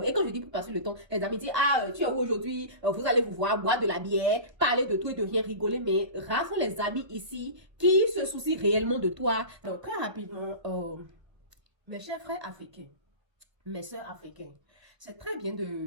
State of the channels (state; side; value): late; left; 1.3 ms